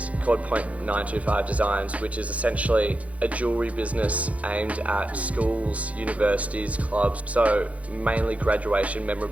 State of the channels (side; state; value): left; late; 0.066 ms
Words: called Point925 Designs, which is essentially a jewellery business aimed at schools, universities, clubs. So mainly graduation